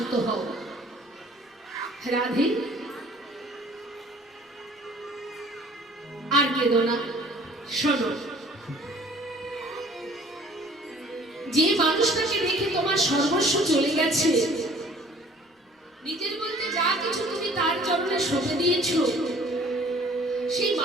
হও। রাধে, আর কেঁদো না, শোনো। যে মানুষটাকে দেখে তোমার সর্বস্ব চলে গেছে, নিজের বলতে যা কিছু তুমি তার চরণে সঁপে দিয়েছ, সেই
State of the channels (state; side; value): normal; both; correlation 0.53